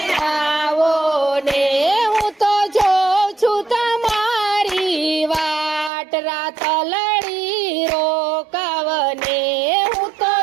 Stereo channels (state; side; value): drops out; left; at 5.9 s